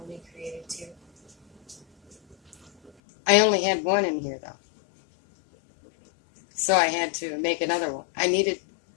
created 2? I only had one in here, though. So I had to make another one. I needed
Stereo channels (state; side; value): drops out; right; at 2.9 s